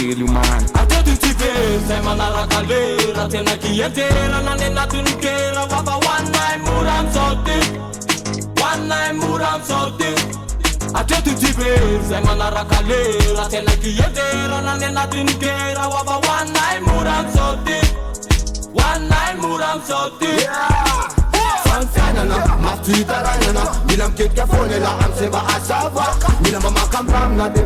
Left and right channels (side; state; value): both; identical; correlation 1.00